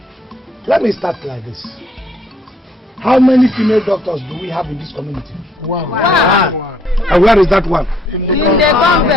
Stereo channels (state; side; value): normal; both; correlation 0.66